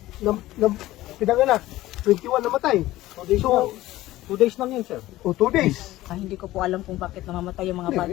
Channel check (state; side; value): quieter; right; 16.3 dB